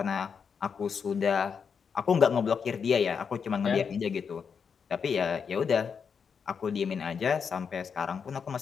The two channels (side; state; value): right; quieter; 6.4 dB